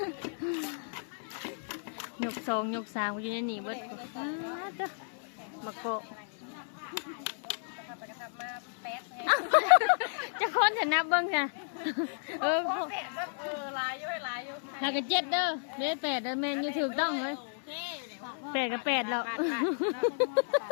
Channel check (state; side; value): silent; right; 56 dB below the other